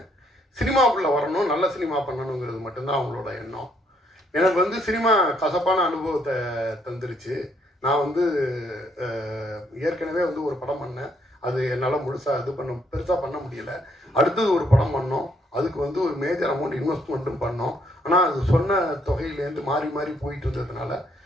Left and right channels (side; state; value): both; normal; correlation 0.71